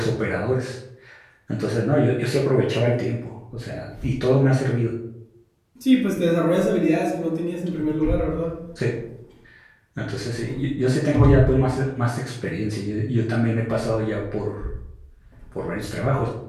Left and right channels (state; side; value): identical; both; correlation 1.00